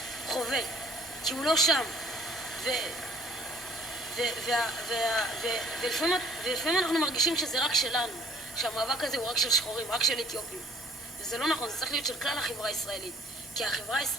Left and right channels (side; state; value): both; normal; correlation 0.57